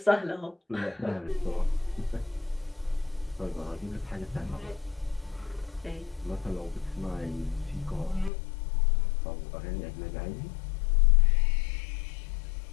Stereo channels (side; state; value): right; drops out; at 8.3 s